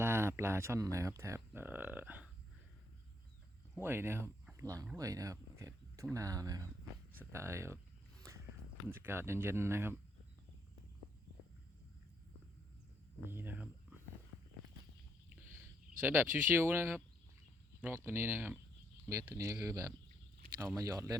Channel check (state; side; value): normal; both; correlation 0.73